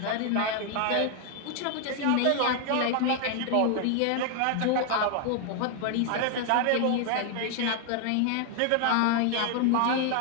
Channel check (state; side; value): different; both; correlation 0.00